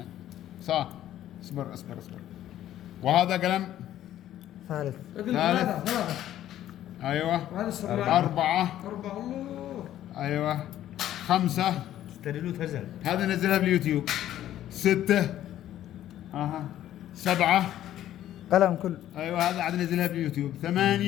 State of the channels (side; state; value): right; quieter; 12.4 dB